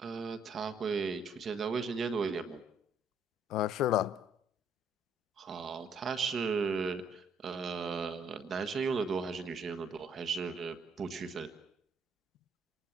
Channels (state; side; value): normal; both; correlation 0.66